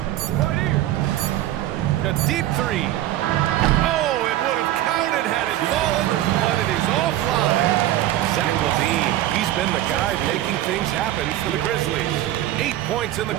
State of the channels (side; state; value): left; quieter; 13.8 dB